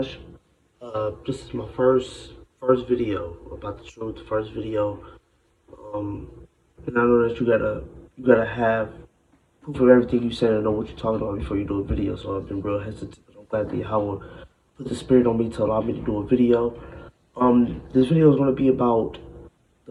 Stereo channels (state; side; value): identical; both; correlation 1.00